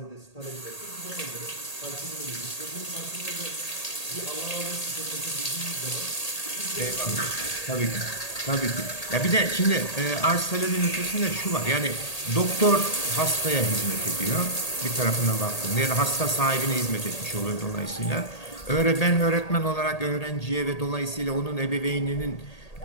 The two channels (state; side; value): late; right; 1.8 ms